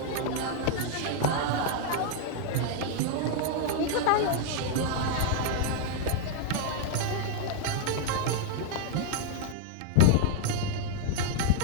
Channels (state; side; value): different; both; correlation 0.00